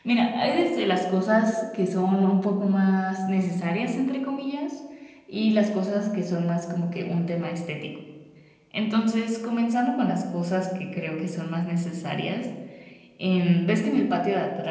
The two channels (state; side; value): identical; both; correlation 1.00